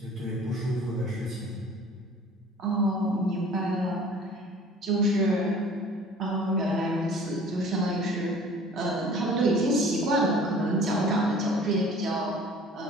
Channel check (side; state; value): both; normal; correlation 0.48